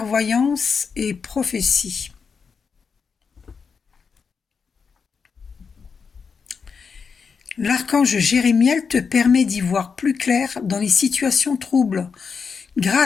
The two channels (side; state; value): right; quieter; 5.7 dB